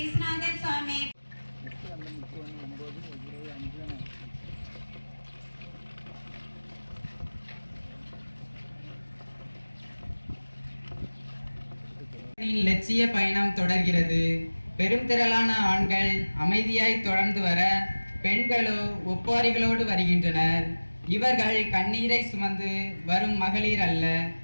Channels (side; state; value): both; inverted; correlation -1.00